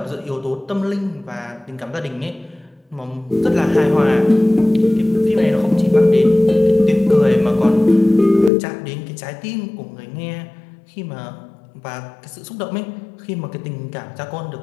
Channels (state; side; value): drops out; right; at 8.5 s